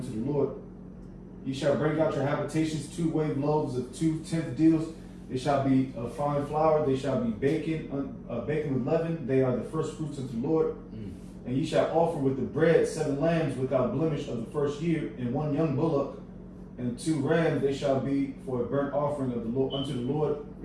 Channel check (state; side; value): identical; both; correlation 1.00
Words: to the Lord. Ye shall bring out your habitations 2 wave loaves of 2 tenth deals. They shall be of fine flour. They shall be baken with leaven. They are the first fruits unto the Lord. And ye shall offer with the bread 7 lambs without blemish of the first year, and 1 young bullock, and 2 rams. They shall be for a burnt offering of the Lord unto the Lord.